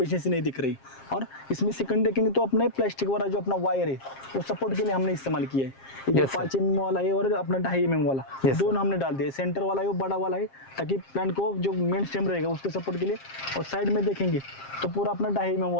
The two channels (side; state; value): right; late; 7.5 ms